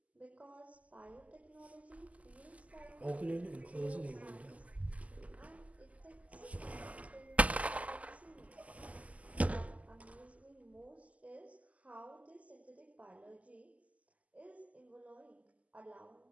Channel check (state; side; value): late; left; 0.071 ms